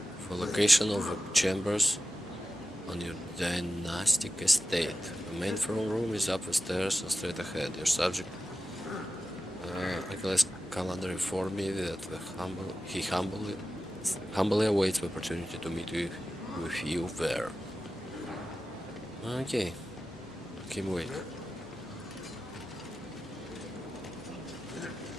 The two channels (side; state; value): both; normal; correlation 0.93